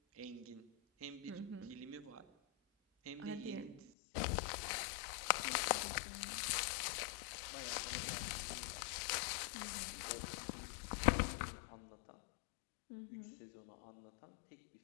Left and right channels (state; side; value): drops out; right; at 3.9 s